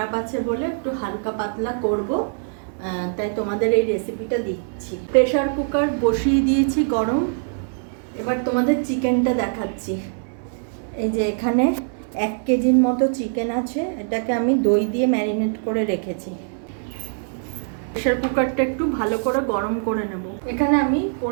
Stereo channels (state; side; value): silent; left; digital silence